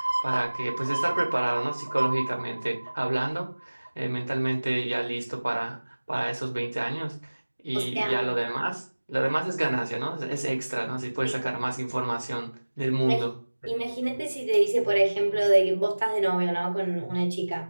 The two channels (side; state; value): both; inverted; correlation -1.00